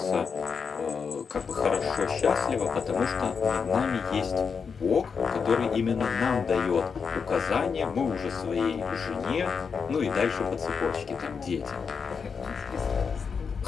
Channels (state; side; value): quieter; right; 5.9 dB